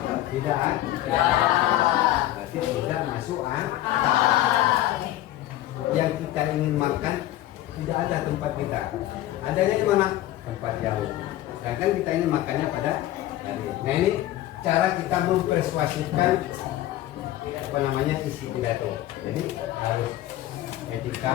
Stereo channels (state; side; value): quieter; right; 14.5 dB